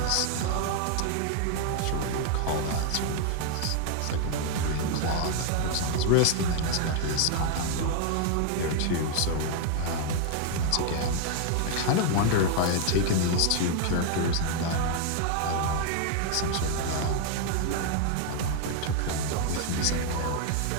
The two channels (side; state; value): both; different; correlation 0.00